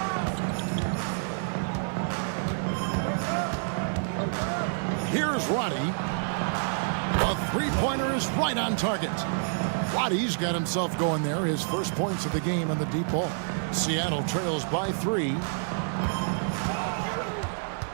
Here's Roddy. Three-pointer is right on target. Wattie's got himself going there. His first points of the game on the deep ball. Seattle trails by 3.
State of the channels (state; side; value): silent; left; digital silence